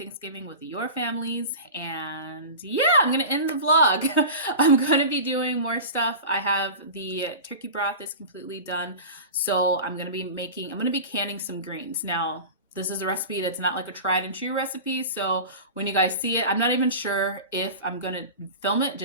with your families. And yeah, I'm going to end the vlog. I'm going to be doing more stuff. I have the turkey broth is completely done. So I'm going to be canning some greens. Now, this is a recipe that's not like a tried and true recipe. So when you guys see it, I'm not even sure if I'm going to film it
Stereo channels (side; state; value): both; inverted; correlation -0.32